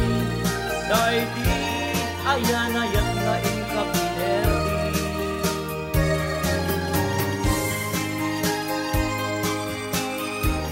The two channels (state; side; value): identical; both; correlation 1.00